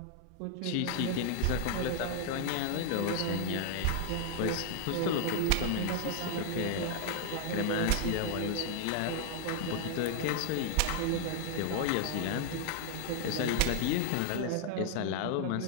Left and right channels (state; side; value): different; both; correlation 0.00